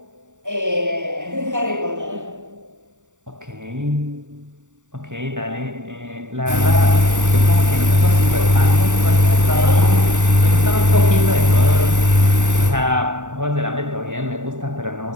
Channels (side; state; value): left; late; 0.86 ms